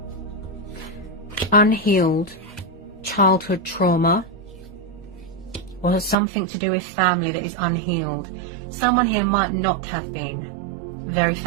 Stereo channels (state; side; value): drops out; left; at 6.2 s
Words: unhealed childhood trauma or something to do with family that is unhealed. Someone here might not have been very